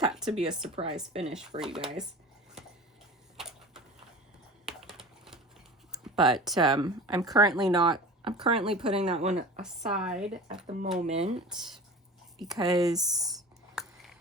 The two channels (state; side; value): normal; both; correlation 0.36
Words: to be a surprise finish for you guys. But I'm currently putting that one aside at the moment because